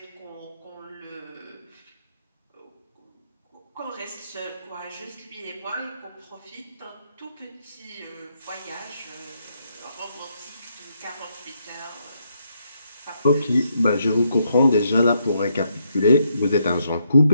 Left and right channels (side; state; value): both; inverted; correlation -0.76